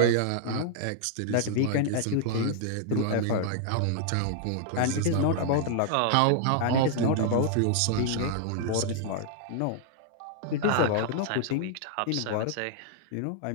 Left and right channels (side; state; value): both; different; correlation -0.01